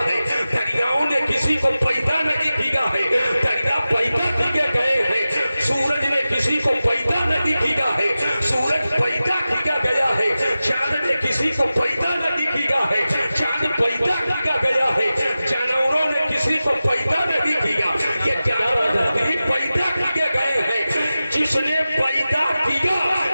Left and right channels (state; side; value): inverted; both; correlation -0.95